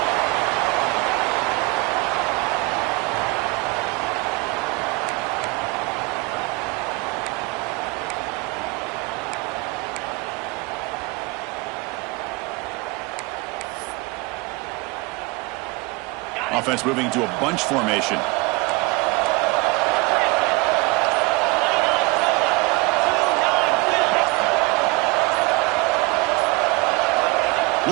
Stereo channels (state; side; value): quieter; left; 24.5 dB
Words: Offense moving to a bunch formation.